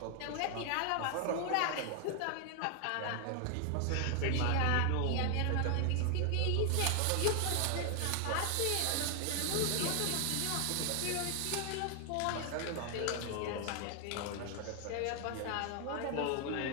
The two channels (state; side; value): different; both; correlation 0.00